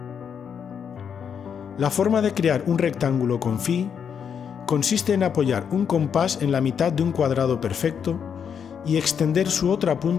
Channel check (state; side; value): quieter; right; 7.4 dB